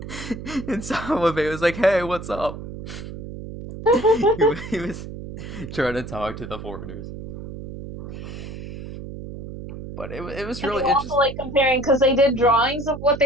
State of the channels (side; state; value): right; noise; hum, 10 dB below the sound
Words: And Sawabe was like, "Hey, what's up?" he was trying to talk to the foreigners. But it was really interesting. Also, like, comparing, because they did drawings of what